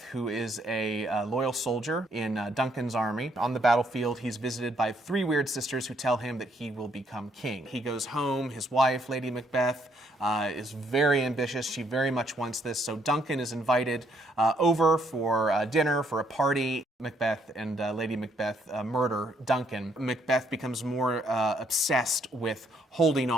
who is a loyal soldier in Duncan's army, on the battlefield, he's visited by 3 weird sisters who tell him that he will become king. He goes home, his wife, Lady Macbeth, is very ambitious. She very much wants this, so Duncan is invited over for dinner, for a party. Macbeth and Lady Macbeth murder Duncan. Macbeth becomes more obsessed with holding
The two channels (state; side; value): normal; both; correlation 0.71